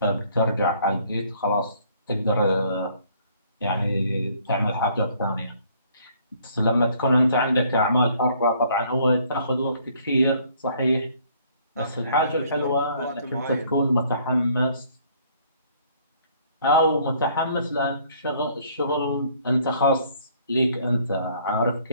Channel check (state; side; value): inverted; both; correlation -0.61